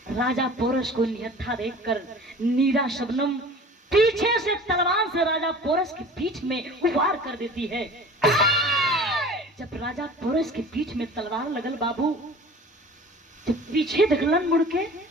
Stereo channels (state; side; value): normal; both; correlation 0.42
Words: राजा पोरस को निहत्था देखकर नीरा शबनम पीछे से तलवार से राजा पोरस की पीठ में वार कर देती है। जब राजा पोरस के पीठ में तलवार लगल बाबू, जब पीछे देखलन मुड़ के